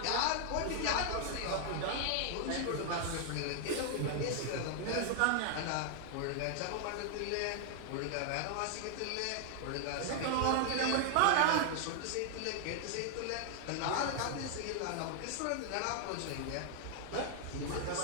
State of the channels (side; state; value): both; different; correlation 0.00